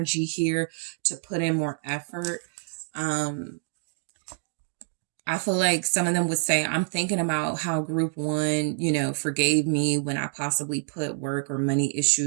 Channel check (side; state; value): left; silent; 60 dB below the other